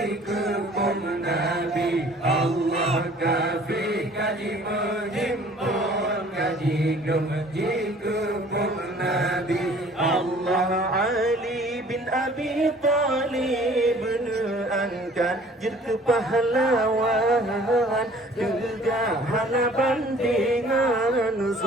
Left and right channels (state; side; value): normal; both; correlation 0.52